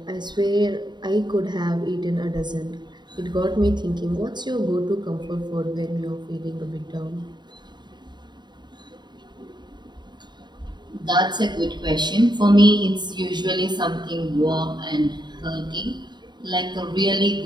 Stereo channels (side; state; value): left; late; 0.21 ms